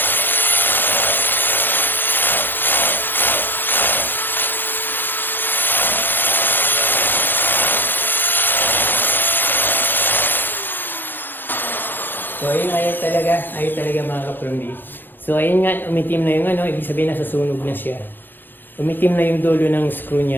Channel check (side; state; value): right; late; 0.094 ms